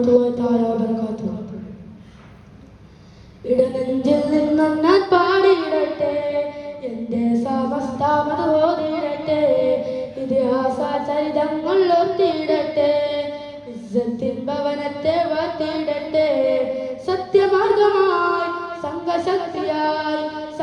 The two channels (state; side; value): identical; both; correlation 1.00